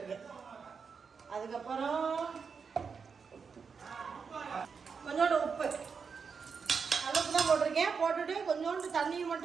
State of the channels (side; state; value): left; quieter; 5.7 dB